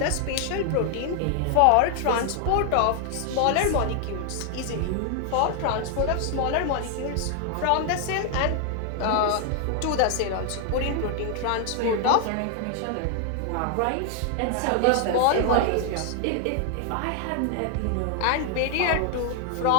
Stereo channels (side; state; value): both; different; correlation 0.00